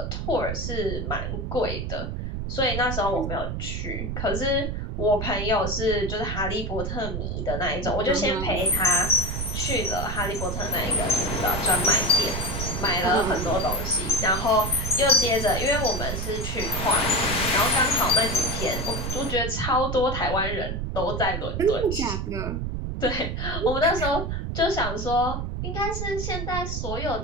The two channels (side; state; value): right; noise; rumble, 3 dB below the sound